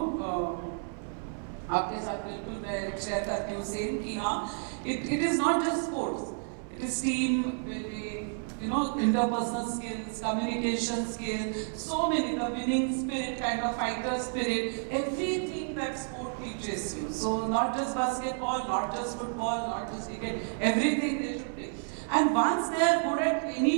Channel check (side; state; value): left; silent; 57 dB below the other